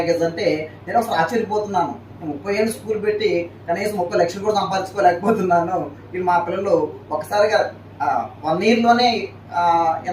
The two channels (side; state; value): both; identical; correlation 1.00